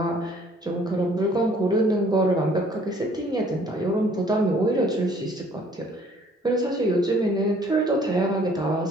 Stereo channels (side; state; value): both; normal; correlation 0.58